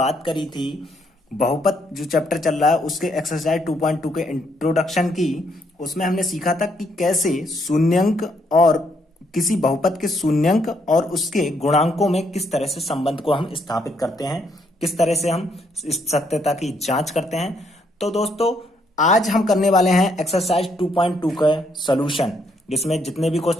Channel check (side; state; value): both; normal; correlation 0.73